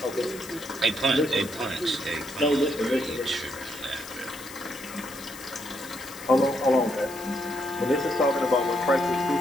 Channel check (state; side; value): noise; left; hiss, 15 dB below the sound